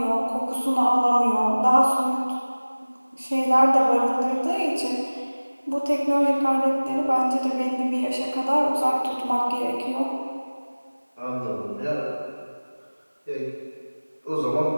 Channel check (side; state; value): both; inverted; correlation -1.00